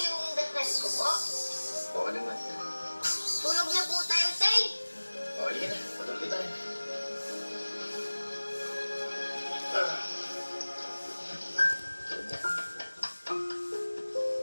yung dasal ko po. Oo naman. Tulog na po tayo, Tay. O, halika na. Matulog tayo.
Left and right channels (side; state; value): both; inverted; correlation -1.00